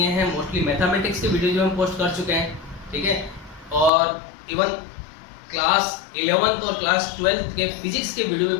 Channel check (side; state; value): right; drops out; at 3.9 s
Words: हैं, मोस्टली मैथमेटिक्स के वीडियोज हम पोस्ट कर चुके हैं, ठीक है। और इवन क्लास 11th और क्लास 12th के फिजिक्स के वीडियो भी